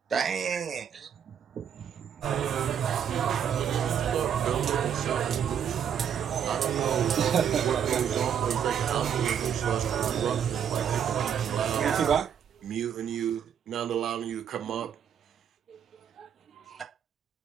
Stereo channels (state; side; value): quieter; left; 8.4 dB